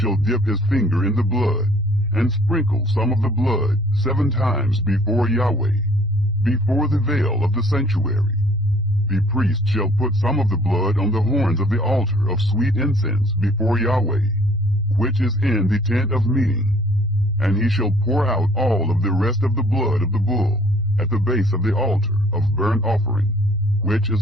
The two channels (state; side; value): normal; both; correlation 0.57